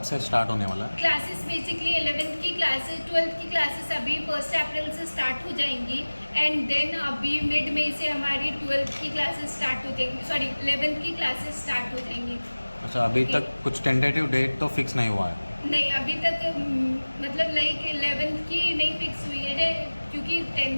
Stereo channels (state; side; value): inverted; both; correlation -1.00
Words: से स्टार्ट होने वाला है? क्लासेस बेसिकली 11th की क्लासेस 12th की क्लासेस अभी 1 अप्रैल से स्टार्ट हो जाएंगी एंड देन अभी मिड मई से हमारी 12th की क्लासेस स्टार्ट हो जाएंगी, सॉरी 11th की क्लासेस स्टार्ट हो जाएंगी। अच्छा, अभी तक कुछ टेंटेटिव डेट तो फिक्स नहीं हुआ है? नहीं, अभी तक मतलब लाइक 11th की नहीं फिक्स हुई है क्योंकि